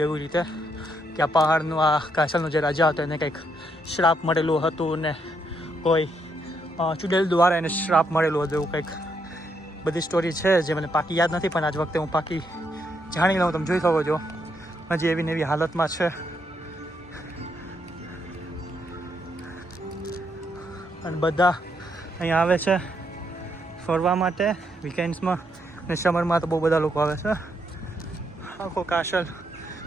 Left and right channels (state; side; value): normal; both; correlation 0.76